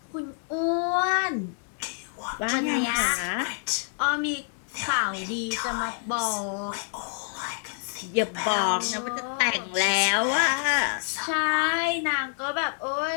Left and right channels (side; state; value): right; silent; 60 dB below the other